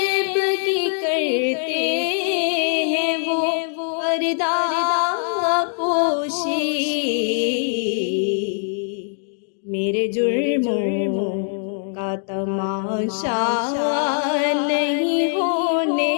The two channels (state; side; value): silent; right; 64 dB below the other